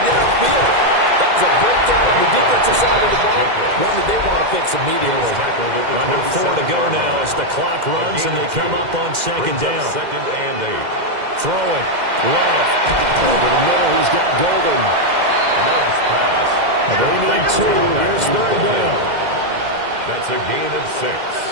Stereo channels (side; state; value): left; late; 2.0 ms